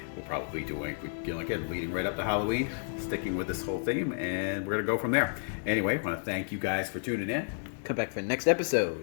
we'll probably be doing, again, leading right up to Halloween, sticking with this whole theme, and we're going to go from there. Anyway, I want to thank you guys for tuning in. Come back for the next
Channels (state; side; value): silent; right; digital silence